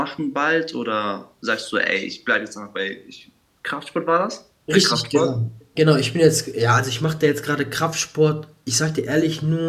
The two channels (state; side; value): identical; both; correlation 1.00